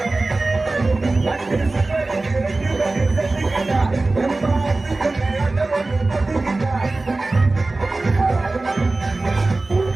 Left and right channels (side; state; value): left; quieter; 3.2 dB